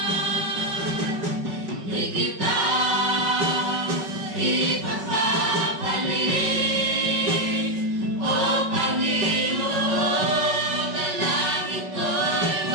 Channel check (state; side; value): late; left; 5.3 ms